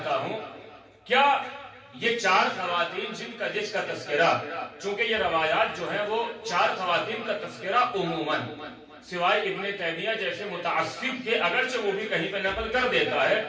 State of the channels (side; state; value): both; identical; correlation 1.00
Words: ہوں، کیا یہ 4 خواتین جس کا تذکرہ، چونکہ یہ روایات جو ہیں وہ 4 خواتین کا تذکرہ عموماً سوائے ابن تیمیہ جیسے متعصب کے، اگرچہ وہ بھی کہیں پہ نقل کر دیتا ہے،